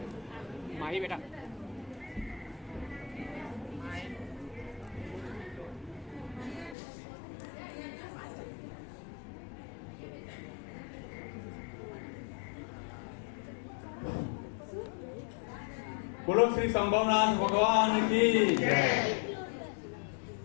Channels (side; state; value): right; drops out; at 6.8 s